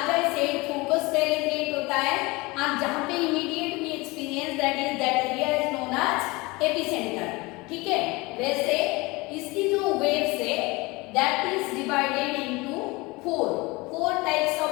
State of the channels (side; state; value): right; quieter; 23.7 dB